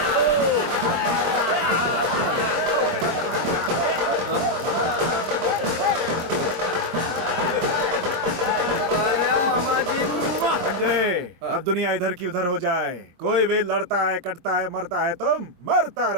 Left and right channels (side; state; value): left; late; 23 ms